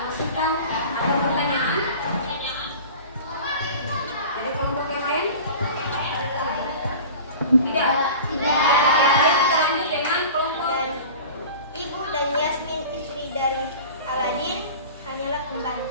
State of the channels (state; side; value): inverted; both; correlation -0.38